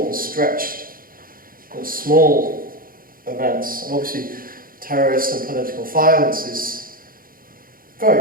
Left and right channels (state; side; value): late; left; 0.41 ms